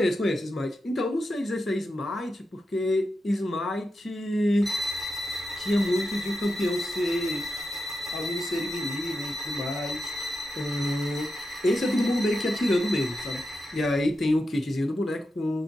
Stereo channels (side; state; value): both; normal; correlation 0.88